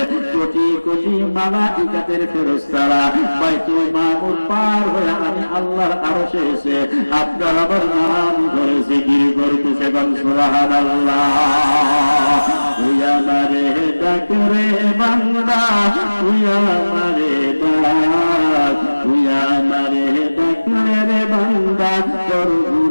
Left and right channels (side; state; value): both; inverted; correlation -1.00